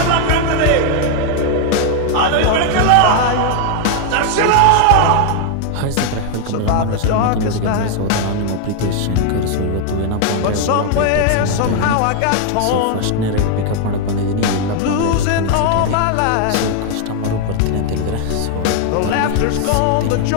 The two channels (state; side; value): different; both; correlation 0.00